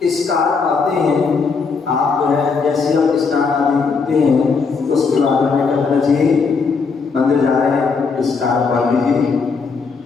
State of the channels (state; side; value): quieter; right; 5.0 dB